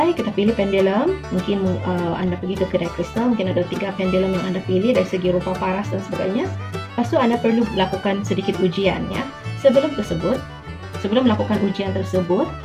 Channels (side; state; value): both; identical; correlation 1.00